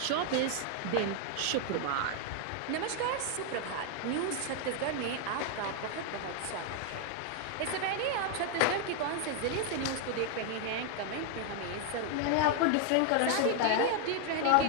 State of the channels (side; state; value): both; different; correlation 0.00